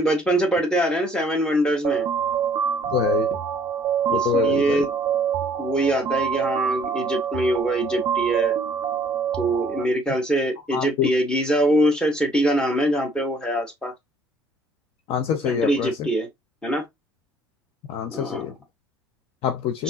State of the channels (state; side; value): normal; both; correlation 0.59